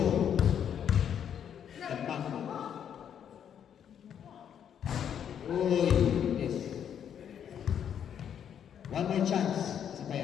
Tentang. Uy, yes. One more chance sa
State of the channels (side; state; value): right; quieter; 8.8 dB